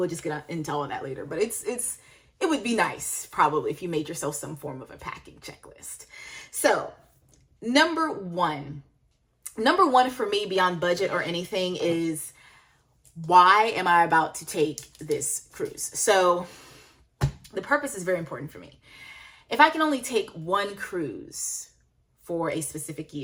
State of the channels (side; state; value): both; identical; correlation 1.00